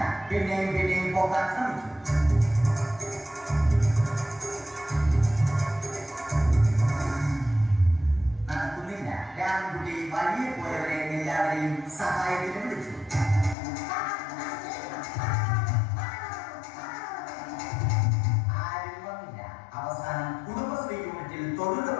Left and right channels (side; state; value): right; drops out; at 13.6 s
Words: പിന്നെയും പൊക്കാൻ ശ്രമിച്ചു. നടക്കുന്നില്ല. രാമൻകുട്ടി വഴിയെ പോയവരെ എല്ലാവരെയും സഹായത്തിന് വിളിച്ചു. ആരും വന്നില്ല. അവസാനം കുടുംബശ്രീ യൂണിറ്റിൽ